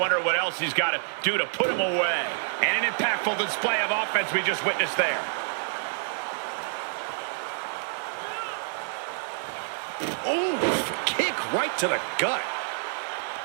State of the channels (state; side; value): silent; left; digital silence